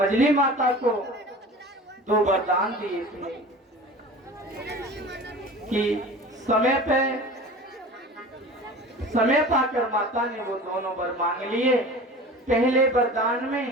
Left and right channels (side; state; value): both; normal; correlation 0.38